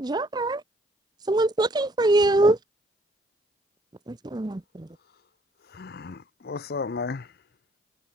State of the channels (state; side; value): normal; both; correlation 0.64